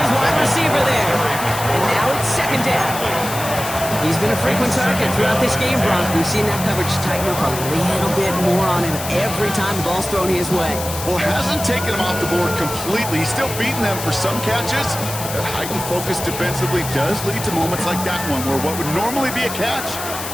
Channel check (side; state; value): left; noise; hiss, 8 dB below the sound